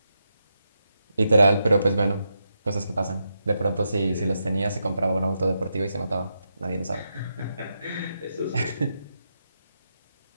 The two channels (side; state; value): both; inverted; correlation -0.85